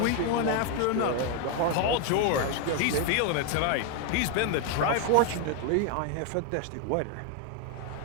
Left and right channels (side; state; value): both; different; correlation 0.01